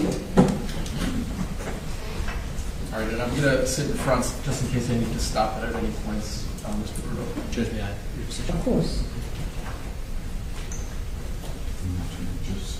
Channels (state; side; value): identical; both; correlation 1.00